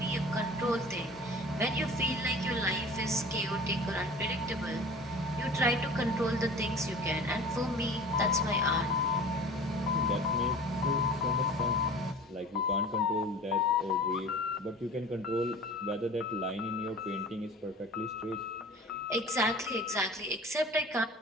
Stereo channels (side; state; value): both; normal; correlation 0.41